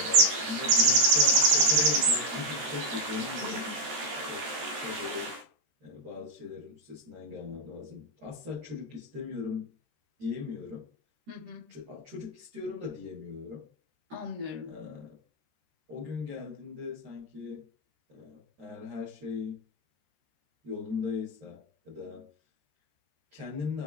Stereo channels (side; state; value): left; late; 13 ms